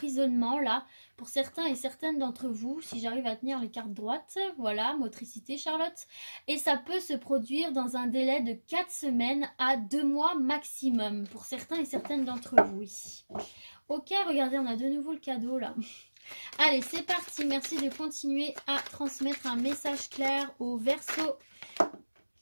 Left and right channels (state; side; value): inverted; both; correlation -1.00